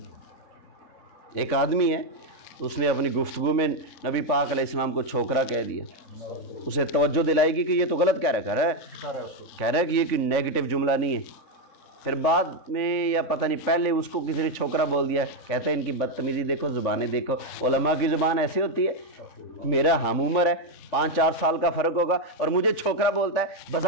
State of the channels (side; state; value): right; late; 3.5 ms